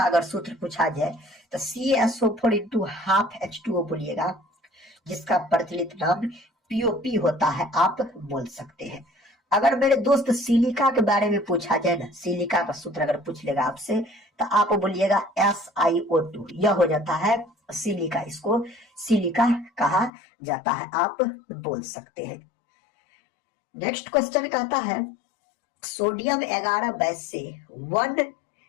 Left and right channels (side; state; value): right; drops out; at 20.1 s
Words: अगर सूत्र पूछा जाए तो CaSO4 इंटू हाफ H2O बोलिएगा, जिसका प्रचलित नाम POP होता है, आप बोल सकते हैं। अगर मेरे दोस्त सिलिका के बारे में पूछा जाए ना, सिलिका का सूत्र अगर पूछ लेगा आपसे तो आप बोलिएगा SiO2, यह हो जाता है सिलिका, इसको सिलिका कहा जाता है, आप बोल सकते हैं। नेक्स्ट क्वेश्चन कहता है सोडियम 11 बेस से 1